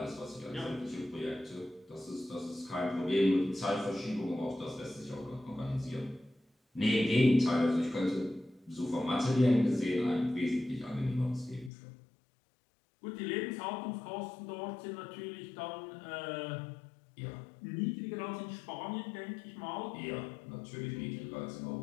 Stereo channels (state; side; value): drops out; right; at 11.7 s